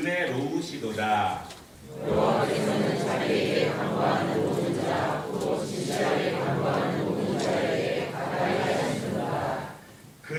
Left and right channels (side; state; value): both; identical; correlation 1.00